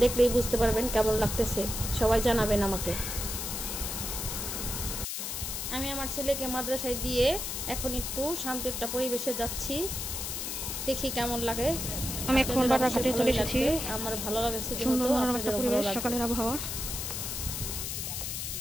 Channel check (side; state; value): left; noise; hiss, 4 dB below the sound